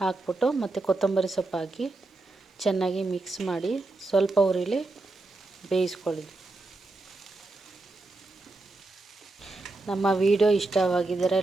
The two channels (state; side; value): quieter; left; 3.1 dB